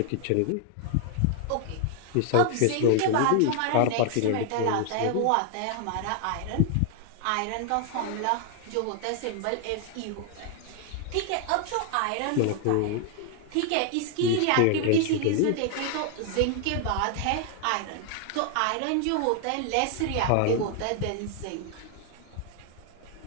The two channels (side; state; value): both; different; correlation 0.00